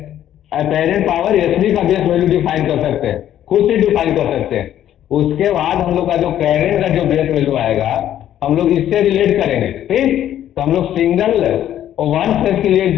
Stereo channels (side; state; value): right; quieter; 11.4 dB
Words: apparent power SB का बेस वैल्यू डिफाइन कर सकते हैं, खुद से डिफाइन कर सकते हैं। उसके बाद हम लोग का जो करंट का जो बेस वैल्यू आएगा हम लोग इससे रिलेट करेंगे, ठीक। तो हम लोग सिंगल और 1 फेज के लिए